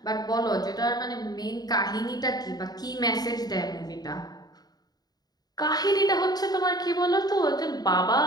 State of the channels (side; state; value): right; late; 0.19 ms